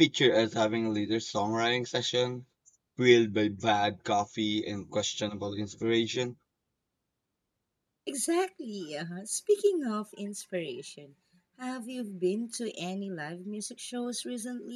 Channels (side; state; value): both; identical; correlation 1.00